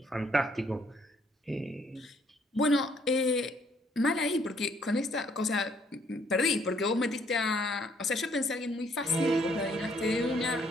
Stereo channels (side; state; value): both; normal; correlation 0.66